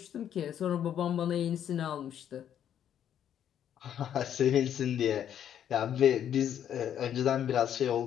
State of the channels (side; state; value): right; quieter; 9.8 dB